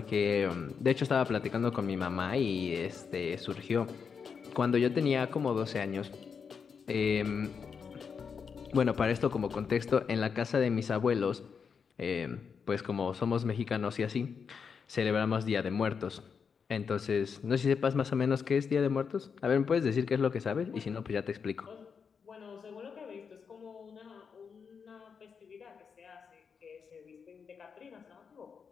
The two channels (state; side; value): quieter; right; 6.2 dB